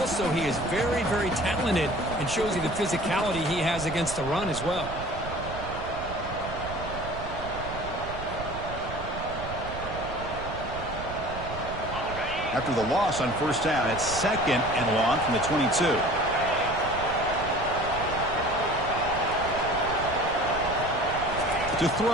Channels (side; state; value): right; noise; rumble, 10 dB below the sound